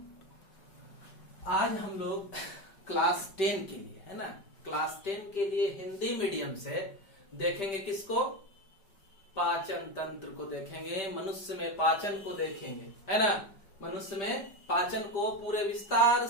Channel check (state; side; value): late; right; 5.1 ms